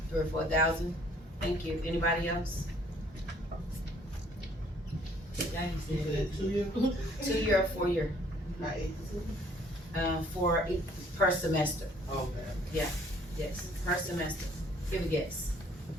3 or 4,000? Thank you. Anybody else? Daddy said 2 year? 2-year or 4-year, Right. per semester. Okay. Yes, per semester. Give a guess.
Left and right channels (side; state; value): both; normal; correlation 0.60